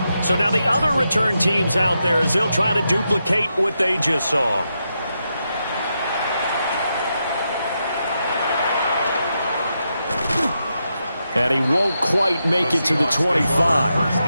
So now the other return teams out there as they'll try to duplicate what they just saw. And he won't quite make it to the 25. First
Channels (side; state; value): both; inverted; correlation -0.85